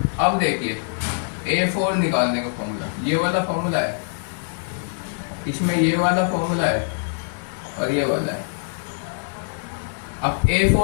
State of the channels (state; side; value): silent; right; 63 dB below the other